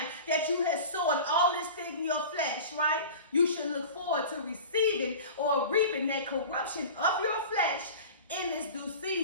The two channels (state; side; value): inverted; both; correlation -0.36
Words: that you had sown all this thing in your flesh, right? You should look forward to receiving or reaping that corruption of your flesh in this due